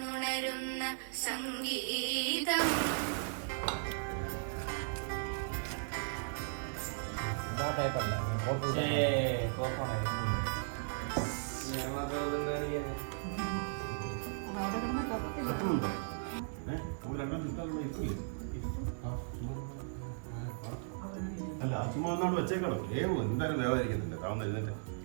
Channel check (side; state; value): left; silent; digital silence